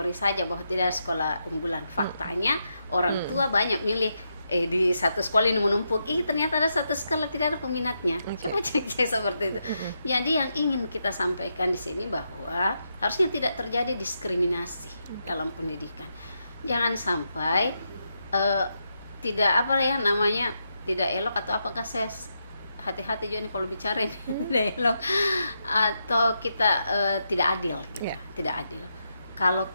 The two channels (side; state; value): both; inverted; correlation -0.83